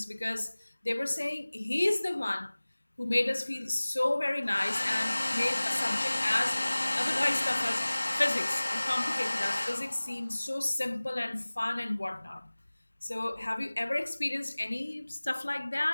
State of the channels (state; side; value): inverted; both; correlation -1.00